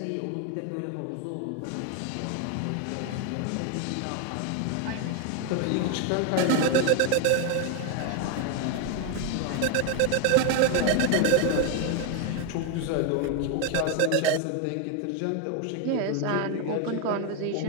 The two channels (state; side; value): different; both; correlation 0.01